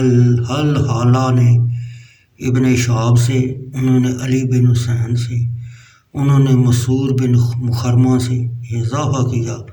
نے ابن شہاب سے، انہوں نے علی بن حسین سے، انہوں نے مسعور بن مخرمہ سے یہ اضافہ کیا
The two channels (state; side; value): identical; both; correlation 1.00